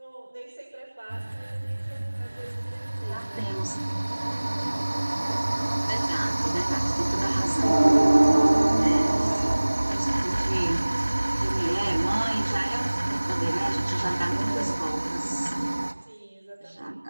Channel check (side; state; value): both; inverted; correlation -1.00